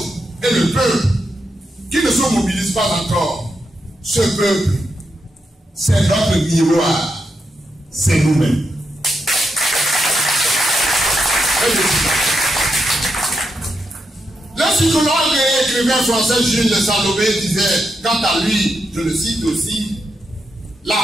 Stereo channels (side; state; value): both; normal; correlation 0.84